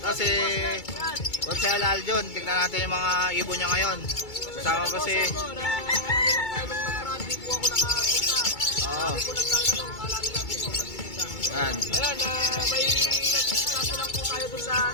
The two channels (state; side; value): late; right; 2.3 ms